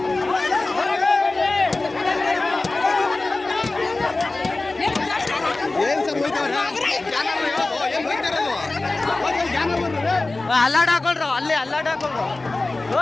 ಅಲ್ಲಾಡ್ ಹಾಕೊಳ್ರು, ಅಲ್ಲಿ ಅಲ್ಲಾಡ್ ಹಾಕೊಳ್ರು.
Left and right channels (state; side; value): quieter; right; 3.2 dB